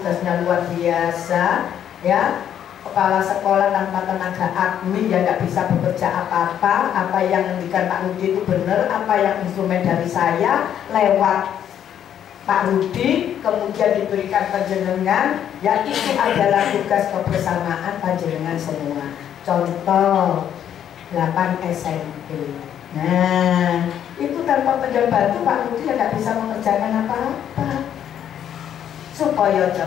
luar biasa ya. Kepala sekolah tanpa tenaga admin ya nggak bisa bekerja apa-apa. Apa yang ngendikan Pak Rudi itu benar, apa yang instrumen dari saya lewat Pak Rudi kemudian diberikan panjenengan ya, itu adalah tugas kebersamaan panjenengan semua. Contoh 8 SMP. Nah, itu tanpa penjabat itu Pak Rudi ya nggak bisa mengerjakan apa-apa. Supaya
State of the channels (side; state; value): right; quieter; 9.7 dB